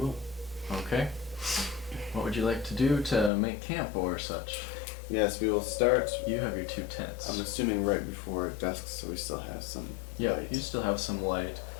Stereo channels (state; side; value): drops out; right; at 3.3 s